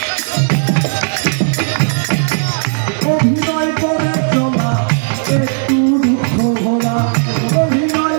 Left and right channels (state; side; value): silent; left; digital silence